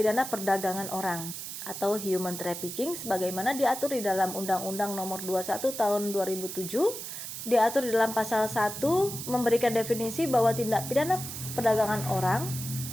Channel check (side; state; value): right; noise; hiss, 8 dB below the sound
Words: perdagangan orang atau human trafficking sebagaimana diatur di dalam Undang-Undang Nomor 21 Tahun 2007. Diatur di dalam pasal 1 memberikan definisi bahwa tindak pidana perdagangan orang